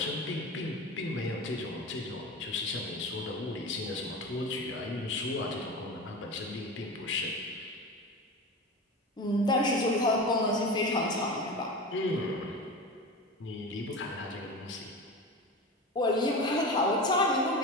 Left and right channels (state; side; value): normal; both; correlation 0.28